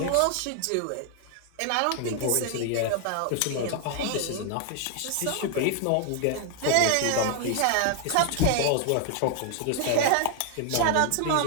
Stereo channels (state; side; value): different; both; correlation 0.00